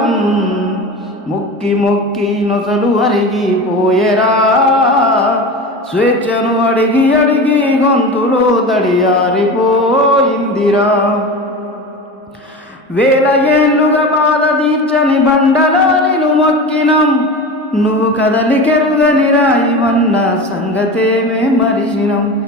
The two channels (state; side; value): normal; both; correlation 0.29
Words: ముక్కి మొక్కి నొసలు అరిగిపోయెరా, స్వేచ్ఛను అడిగి అడిగి గొంతులో తడియారిపోయిందిరా. వేల ఏళ్ళుగా బాధ తీర్చని బండలాలను మొక్కినం, నువ్వు కదలికెరుగని రాయివన్న సంగతేమే మరిచినం.